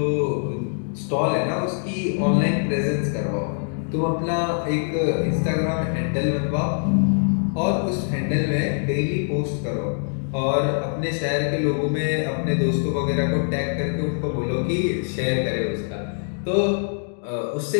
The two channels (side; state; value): right; silent; digital silence